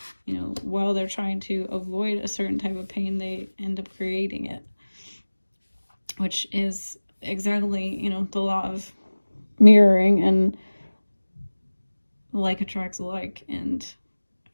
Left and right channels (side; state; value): both; inverted; correlation -1.00